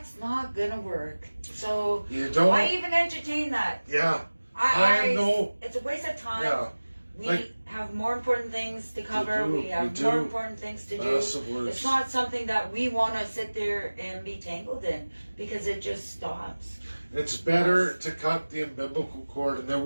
not gonna work. So You don't. why even entertain that? Yeah. I know. It's a waste of time. Yeah. We Like- have more important things to cover. do, We have we more do. important things to do. Massive words. It's not something that we want to sit there and be tangled in because it just stops. It's better to cut the umbilical cord, and there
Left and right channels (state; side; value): inverted; both; correlation -1.00